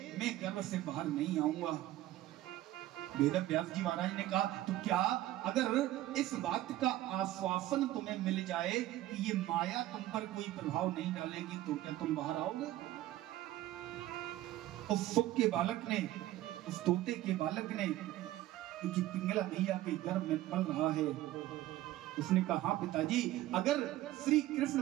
मैं गर्भ से बाहर नहीं आऊंगा। वेद व्यास जी महाराज ने कहा, तो क्या अगर इस बात का आश्वासन तुम्हें मिल जाए कि ये माया तुम पर कोई प्रभाव नहीं डालेगी, तो क्या तुम बाहर आओगे? उस सुख के बालक ने, उस तोते के बालक ने, क्योंकि पिंगला मैया के गर्भ में पल रहा है, उसने कहा, हाँ पिताजी, अगर श्री कृष्ण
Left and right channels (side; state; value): left; quieter; 15.0 dB